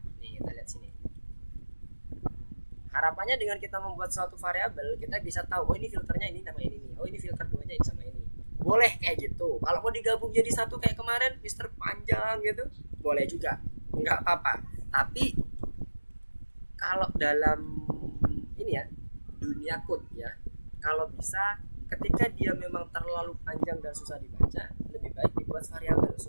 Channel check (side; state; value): both; inverted; correlation -1.00